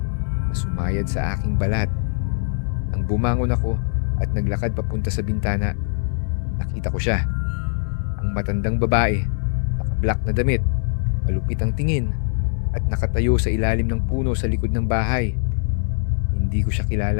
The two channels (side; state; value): right; silent; 64 dB below the other